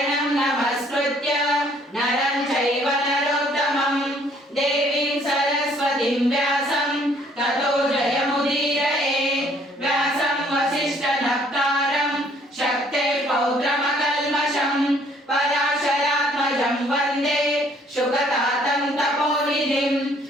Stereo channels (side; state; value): both; normal; correlation 0.62